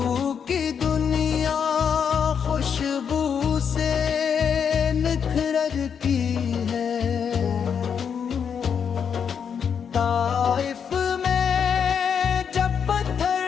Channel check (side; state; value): right; quieter; 7.2 dB